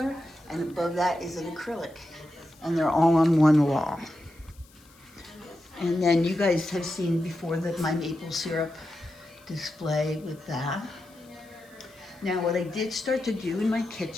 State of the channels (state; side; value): noise; left; hiss, 28 dB below the sound